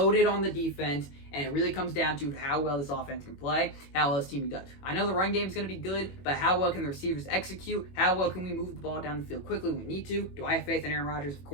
on the defense, and it really comes down to how well this offense can play, how well this team does. I know the run game is going to be good, but how well can the receivers execute? How well can we move the ball down the field quickly when we need to? Do I have faith in Aaron Rodgers? Of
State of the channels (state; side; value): late; right; 21 ms